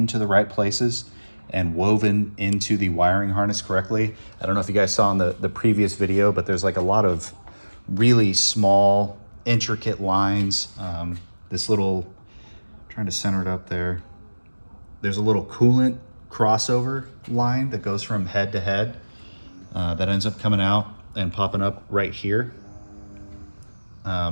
the right places and woven into the wiring harness correctly. I don't know if you guys saw in the previous video, but there's like a lot of really small, intricate lines. This little, trying to center it up there. There's a little coolant crossover line that goes from head to head that ends up coming out and popping up right here.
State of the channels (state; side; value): inverted; both; correlation -1.00